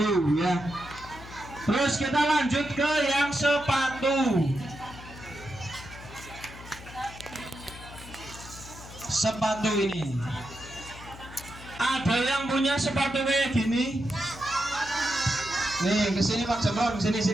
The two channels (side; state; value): left; noise; hum, 16 dB below the sound